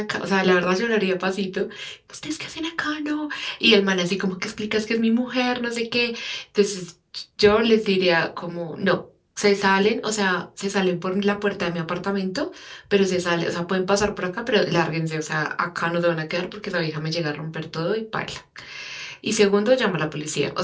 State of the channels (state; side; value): identical; both; correlation 1.00